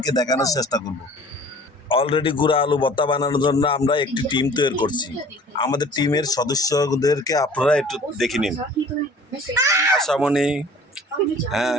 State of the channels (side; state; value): both; normal; correlation 0.48